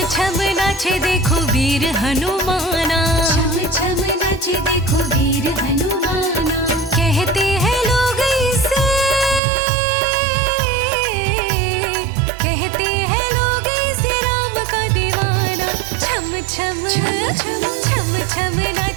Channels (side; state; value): left; drops out; at 9.4 s